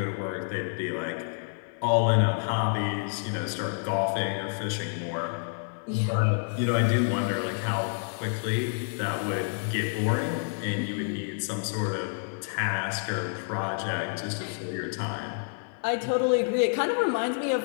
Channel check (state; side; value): silent; right; 58 dB below the other